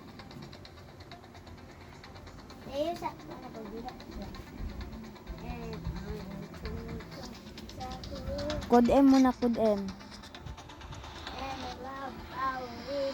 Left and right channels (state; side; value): identical; both; correlation 1.00